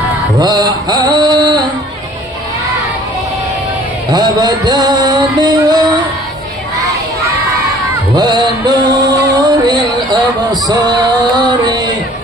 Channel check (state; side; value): normal; both; correlation 0.53